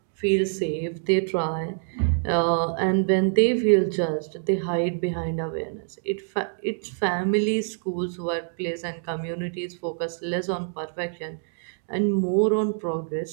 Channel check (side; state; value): left; silent; digital silence